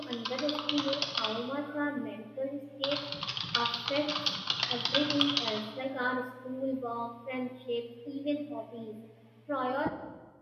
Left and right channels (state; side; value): identical; both; correlation 1.00